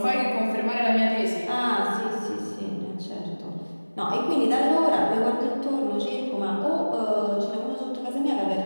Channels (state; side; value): inverted; both; correlation -1.00